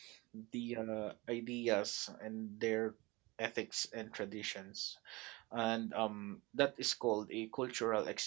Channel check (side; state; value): left; quieter; 23.3 dB